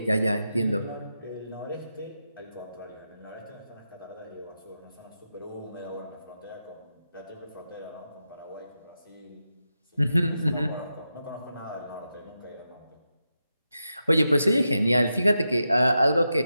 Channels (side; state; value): both; inverted; correlation -0.88